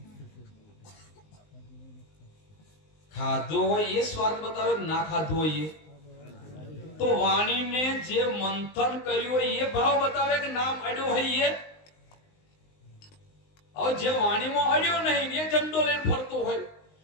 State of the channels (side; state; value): right; late; 19 ms